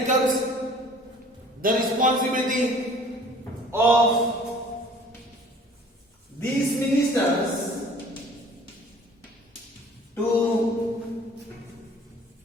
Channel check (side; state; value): both; normal; correlation 0.51